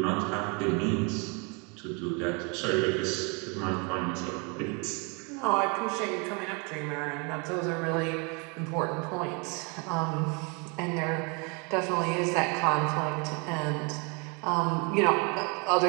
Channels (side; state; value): left; quieter; 32.5 dB